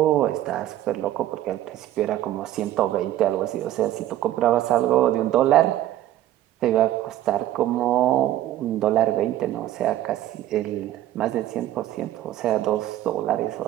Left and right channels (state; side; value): quieter; left; 13.5 dB